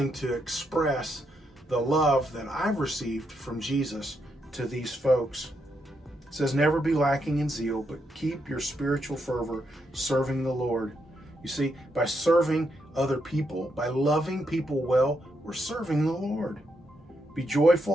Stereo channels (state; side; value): normal; both; correlation 0.80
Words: to express the love that I've received from Jesus to these folks. It says, never be lacking in zeal, but keep your spiritual fervor serving the Lord. You see, by serving other people, by loving people well, we're serving the Lord. Be